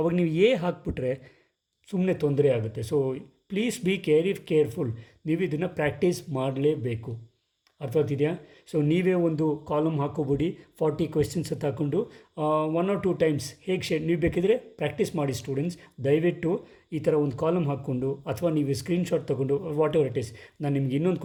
ನೀವು ಹಾಕ್ಬಿಟ್ರೆ ಸುಮ್ಮನೆ ತೊಂದರೆ ಆಗುತ್ತೆ. So please be careful. ನೀವು ಇದನ್ನು ಪ್ರಾಕ್ಟೀಸ್ ಮಾಡಲೇಬೇಕು. ಅರ್ಥವಾಗ್ತಿದೆಯಾ? ಸೊ ನೀವೇ ಒಂದು ಕಾಲಮ್ ಹಾಕೋಬಿಡಿ, 40 ಕ್ವೆಶ್ಚನ್ಸ್ ಅಂತ ಹಾಕ್ಕೊಂಡು 1 or 2 times ಹೇಗೆ ನೀವು ಬೇಕಿದ್ರೆ ಪ್ರಾಕ್ಟೀಸ್ ಮಾಡಿ ಸ್ಟೂಡೆಂಟ್ಸ್. ದಯವಿಟ್ಟು ಈ ಥರ ಒಂದು ಕಾಲಮ್ ಹಾಕ್ಕೊಂಡು ಅಥವಾ ನೀವು ಸ್ಕ್ರೀನ್ಶಾಟ್ ತೊಗೊಂಡು ವಾಟ್ ಎವರ್ ಇಟ್ ಈಸ್. ನಾನು ನಿಮ್ಗೆ ಇನ್ನೊಂದು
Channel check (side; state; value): both; identical; correlation 1.00